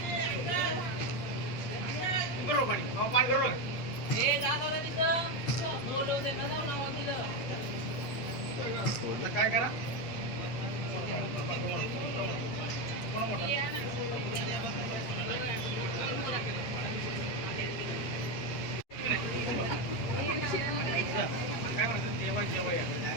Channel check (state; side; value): late; right; 8.3 ms